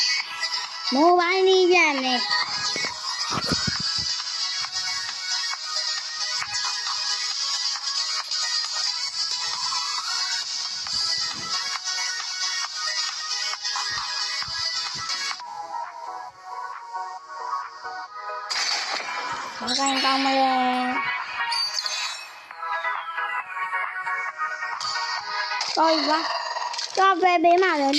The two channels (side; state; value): both; identical; correlation 1.00